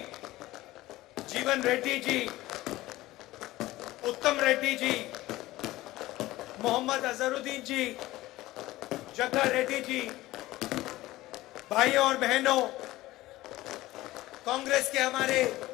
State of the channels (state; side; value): quieter; right; 17.4 dB